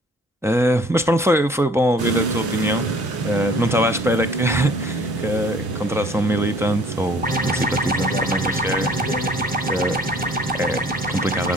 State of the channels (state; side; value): normal; both; correlation 0.54